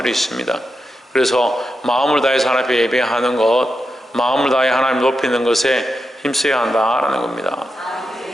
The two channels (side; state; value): both; normal; correlation 0.87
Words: 있습니다. 그래서 마음을 다해서 하나님 앞에 예배하는 것, 마음을 다해 하나님 높이는 것에 힘써야 한다라는 겁니다.